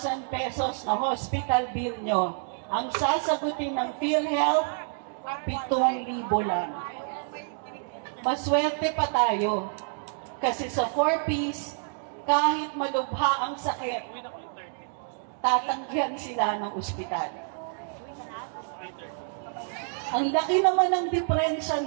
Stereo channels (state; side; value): silent; left; 59 dB below the other